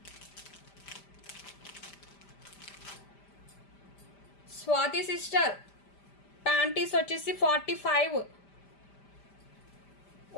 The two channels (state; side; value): late; right; 5.1 ms